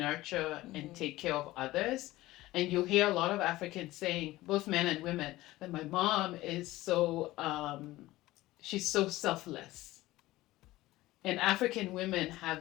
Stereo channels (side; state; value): right; quieter; 17.5 dB